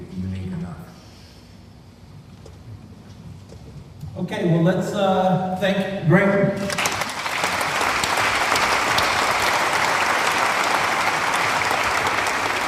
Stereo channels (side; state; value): both; identical; correlation 1.00